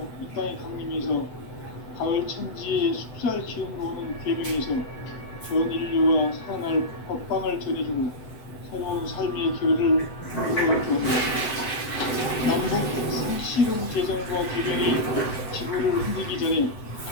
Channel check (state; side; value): late; right; 7.9 ms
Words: 이 땅에 강림해서 가을 천지의 숲살 기운으로 오는 계명에서 전 인류와 살아날 법방을 전해주고 새로운 삶의 길을 열어주었다. 남북 씨름 개정과 개명이 지구를 흔들기 전에